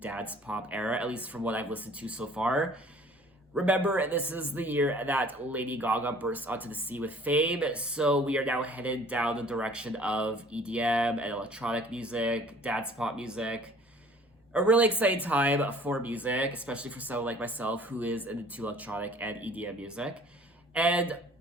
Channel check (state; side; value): normal; both; correlation 0.51